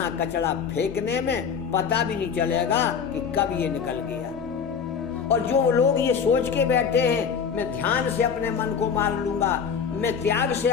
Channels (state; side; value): quieter; right; 6.7 dB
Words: कचरा फेंकने में पता भी नहीं चलेगा कि कब ये निकल गया। और जो लोग ये सोच के बैठे हैं मैं ध्यान से अपने मन को मार लूंगा, मैं त्याग से